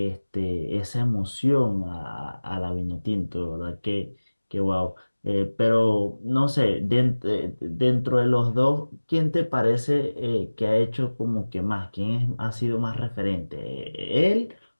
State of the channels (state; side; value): inverted; both; correlation -1.00